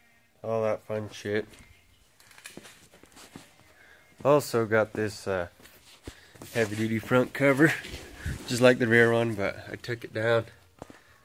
All that fun shit. Also got this heavy duty front cover, just like the rear one, but I took it down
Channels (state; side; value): identical; both; correlation 1.00